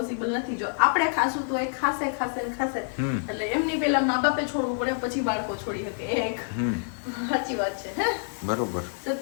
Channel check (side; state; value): right; silent; digital silence